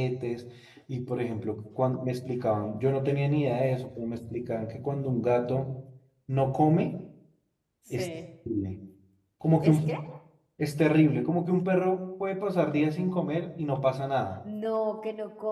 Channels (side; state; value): both; identical; correlation 1.00